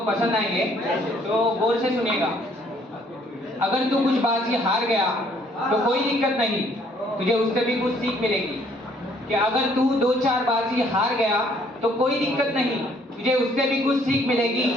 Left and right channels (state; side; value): normal; both; correlation 0.63